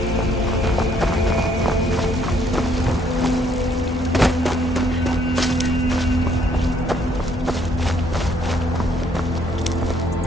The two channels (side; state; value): both; normal; correlation 0.67